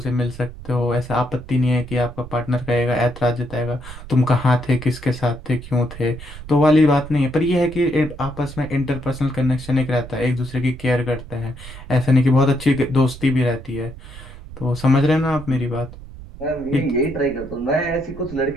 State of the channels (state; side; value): noise; right; rumble, 14 dB below the sound